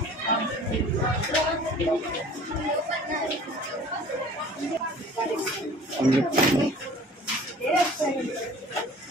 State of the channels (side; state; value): both; normal; correlation 0.47